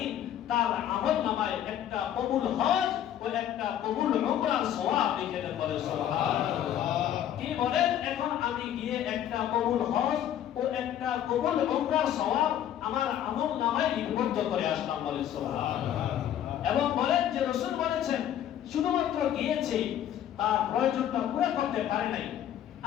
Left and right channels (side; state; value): right; quieter; 10.8 dB